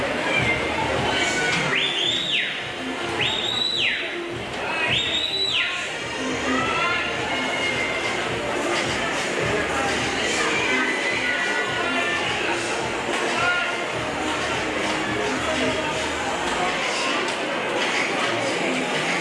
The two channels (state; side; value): identical; both; correlation 1.00